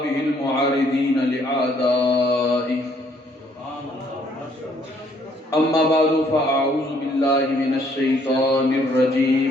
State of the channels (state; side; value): normal; both; correlation 0.65